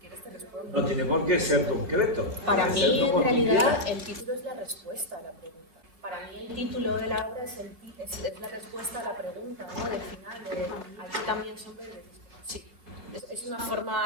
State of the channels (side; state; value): left; late; 3.1 ms